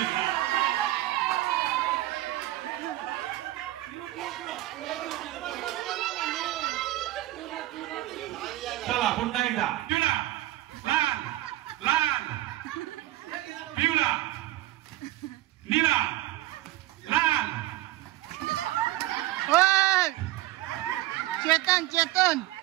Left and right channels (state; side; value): quieter; left; 16.1 dB